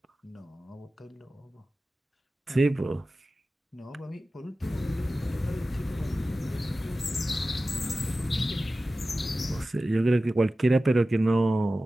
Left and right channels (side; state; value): both; normal; correlation 0.95